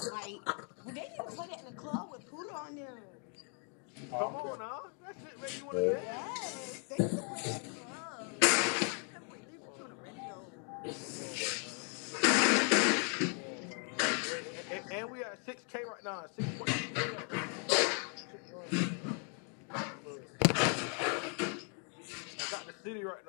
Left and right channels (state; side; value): quieter; right; 39.0 dB